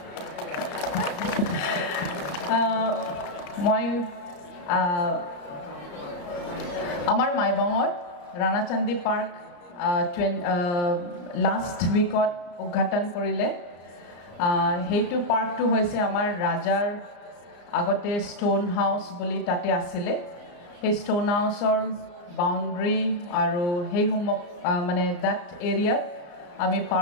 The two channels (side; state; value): right; late; 34 ms